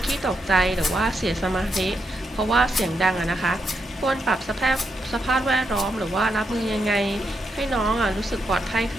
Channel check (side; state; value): both; normal; correlation 0.81